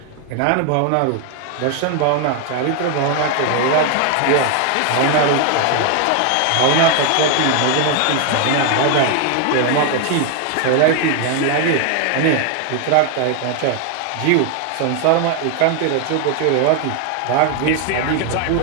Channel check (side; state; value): both; different; correlation 0.01